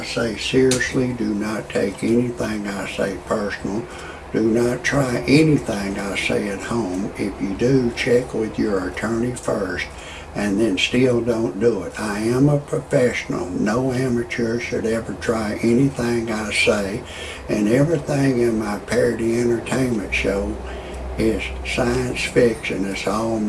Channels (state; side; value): identical; both; correlation 1.00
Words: say seriously. Do not take anything I say personal. Do not try anything I say at home. If you do, check with your attorney first, and then still don't do it. I am a professional. No amateur should ever try anything I say, and everything in my parody entertainment show is science fiction. It's all